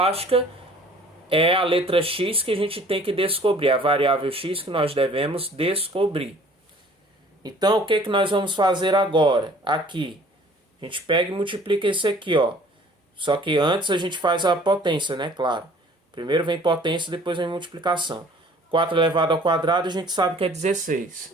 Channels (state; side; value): normal; both; correlation 0.52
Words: é a letra X que a gente tem que descobrir, a variável X que nós devemos descobrir. Então, o que nós vamos fazer agora? Aqui, a gente pega e multiplica esse aqui, ó. Só que antes a gente faz a potência, né? Claro. Primeiro vem potência, depois vem multiplicação. 4 elevado ao quadrado, a gente sabe que é 16.